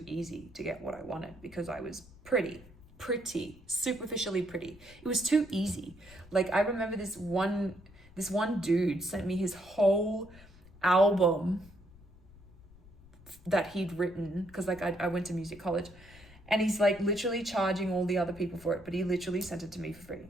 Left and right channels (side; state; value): left; noise; rumble, 22 dB below the sound